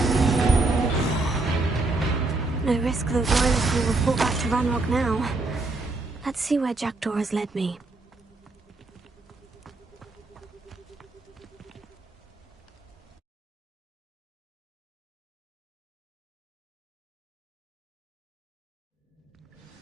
No risk those Loyalists will report back to Ranrock now. Let's see where Jackdaw has led me.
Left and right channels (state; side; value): quieter; left; 3.2 dB